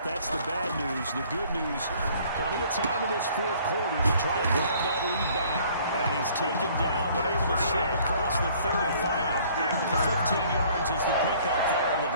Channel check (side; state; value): both; inverted; correlation -0.57